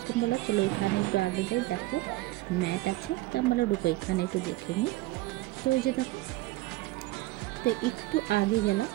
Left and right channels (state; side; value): quieter; left; 18.8 dB